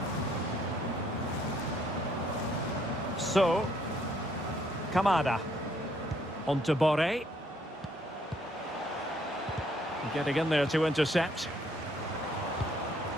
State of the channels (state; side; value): normal; both; correlation 0.67